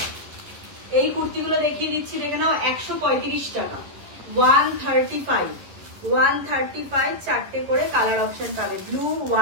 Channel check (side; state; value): left; late; 11 ms